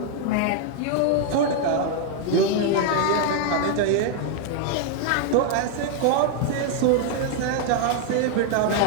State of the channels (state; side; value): different; both; correlation 0.00